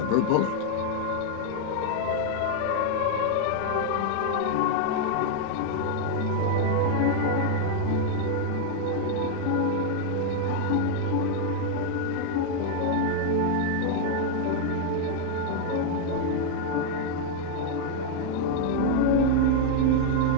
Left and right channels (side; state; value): both; different; correlation 0.00